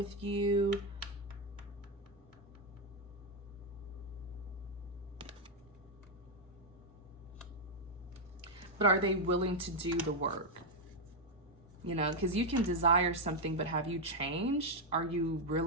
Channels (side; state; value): both; normal; correlation 0.01